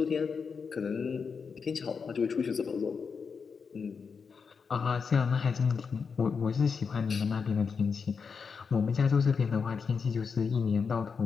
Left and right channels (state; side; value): quieter; right; 5.7 dB